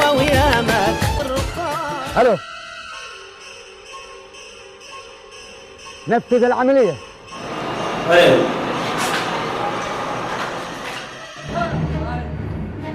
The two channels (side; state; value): both; identical; correlation 1.00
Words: الو نفذ العملية. ايوه